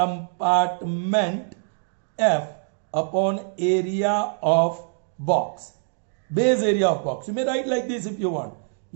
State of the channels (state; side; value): silent; left; digital silence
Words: F upon area of box, base area of box. You may write like this if you want.